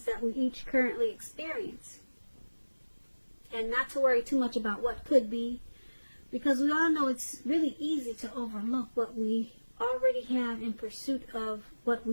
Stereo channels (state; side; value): inverted; both; correlation -1.00